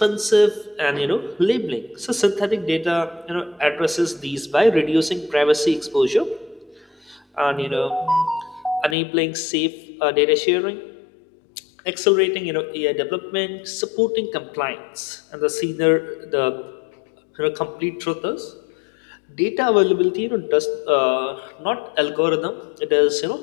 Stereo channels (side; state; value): right; drops out; at 9.0 s